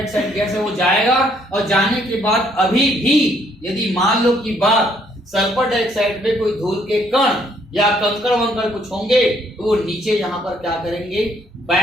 गैस है वो जाएगा। और जाने के बाद अभी भी यदि मान लो की बात सल्फर डाइऑक्साइड पे कोई धूल के कण या कंकड़ वंकड़ कुछ होंगे तो वो नीचे यहाँ पर क्या करेंगे,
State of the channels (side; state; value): both; normal; correlation 0.67